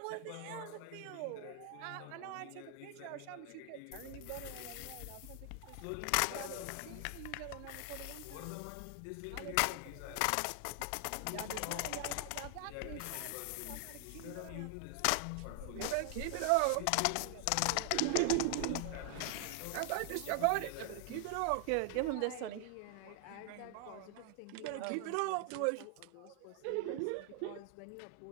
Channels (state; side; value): different; both; correlation 0.00